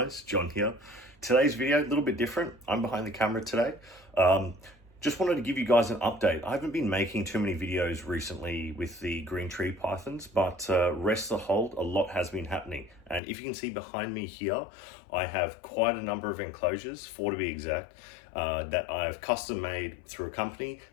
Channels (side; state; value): right; drops out; at 13.2 s